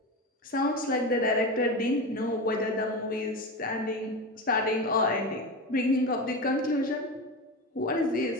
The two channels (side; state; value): both; normal; correlation 0.22